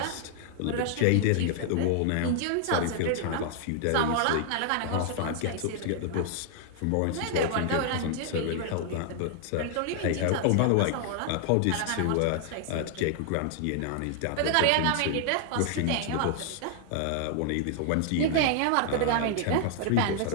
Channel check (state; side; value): different; both; correlation 0.00